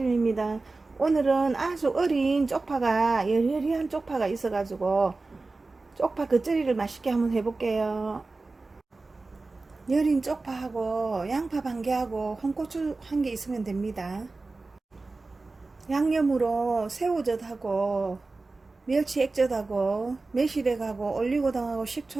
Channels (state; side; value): quieter; left; 3.5 dB